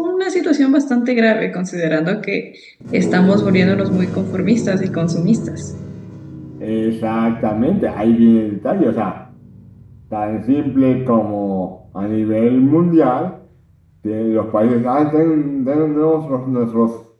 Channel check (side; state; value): both; identical; correlation 1.00